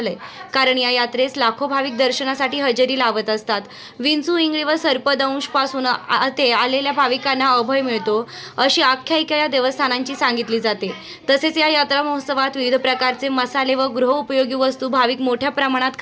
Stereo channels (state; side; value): identical; both; correlation 1.00